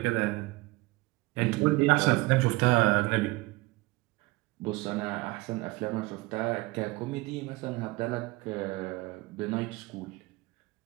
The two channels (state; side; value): quieter; left; 22.0 dB